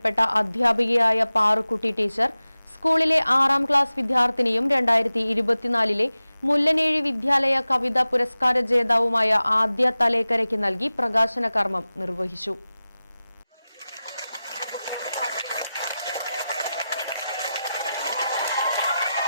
അധ്യാപികയായ പാറുക്കുട്ടി ടീച്ചർ സ്കൂളിലെ 6ാം ക്ലാസ് വിദ്യാർത്ഥിനിയും 2024 മുല്ലനേഴി വിദ്യാലയ കവിതാ പുരസ്കാര ജേതാവുമായ ആദ്യ തലേക്കരയ്ക്ക് നൽകി പ്രകാശന കർമ്മം നിർവഹിച്ചു.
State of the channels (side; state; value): both; inverted; correlation -0.95